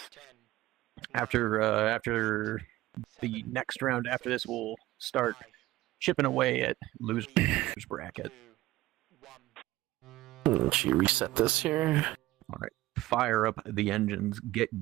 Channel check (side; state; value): left; quieter; 16.8 dB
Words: After the next round after this, we'll start chipping away at losers bracket. Let's reset this here. All right, fire up the engines. Get